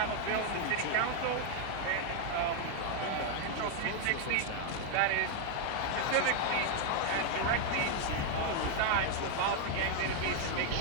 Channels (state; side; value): different; both; correlation 0.00